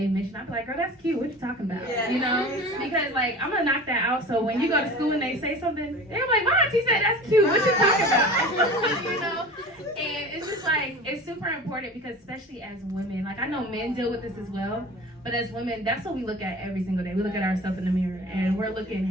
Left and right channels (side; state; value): both; normal; correlation 0.37